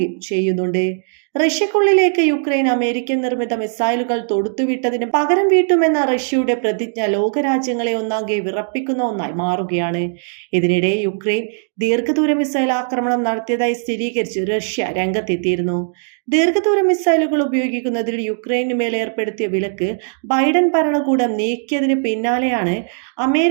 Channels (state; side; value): silent; left; digital silence